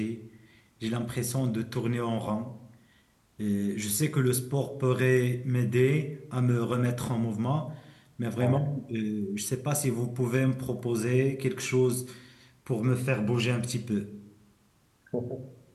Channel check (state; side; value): identical; both; correlation 1.00